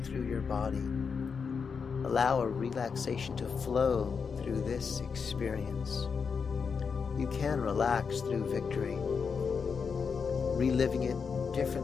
through your body. Allow a relaxation to flow through this experience. You can relax through victory, reliving it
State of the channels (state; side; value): quieter; right; 5.8 dB